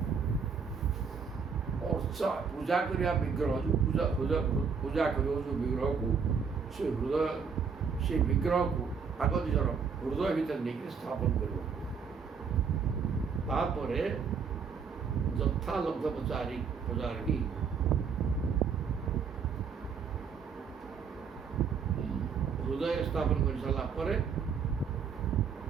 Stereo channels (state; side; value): quieter; left; 6.0 dB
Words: ଅର୍ଚ୍ଚା ପୂଜା କରିବା ବିଗ୍ରହ ଯେଉଁ ପୂଜା କରିବ ଯେଉଁ ବିଗ୍ରହକୁ ସେ ବିଗ୍ରହକୁ ଆଗ ନିଜର ହୃଦୟ ଭିତରେ ନେଇକି ସ୍ଥାପନ କରିବ। ତାପରେ ଯଥା ଲବ୍ଧ ପ୍ରଚାରିକି ହୃଦୟରେ ସ୍ଥାପନ କରି ସାରିଲା ପରେ